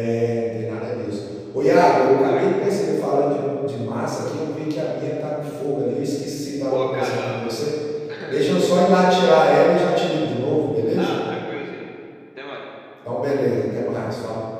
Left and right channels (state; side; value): identical; both; correlation 1.00